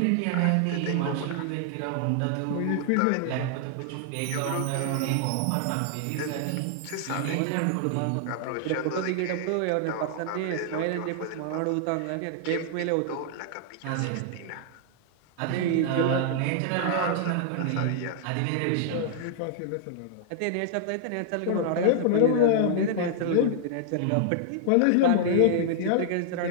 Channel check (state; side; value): different; both; correlation -0.01